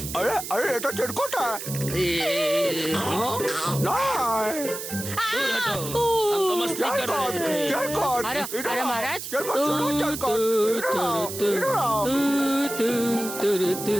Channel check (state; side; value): noise; right; hiss, 8 dB below the sound